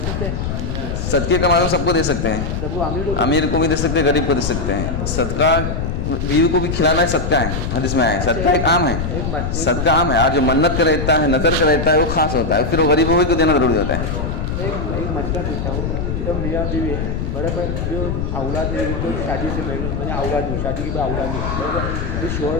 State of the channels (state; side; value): noise; left; rumble, 3 dB below the sound